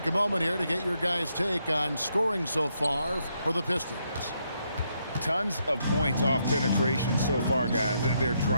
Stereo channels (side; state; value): both; inverted; correlation -0.77